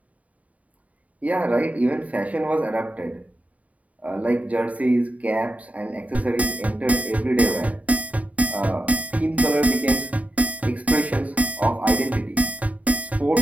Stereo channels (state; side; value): late; left; 0.069 ms